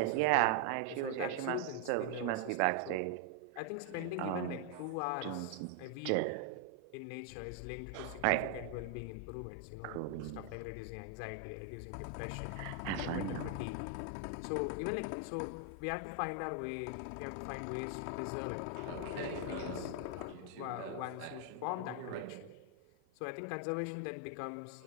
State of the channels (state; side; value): different; both; correlation 0.00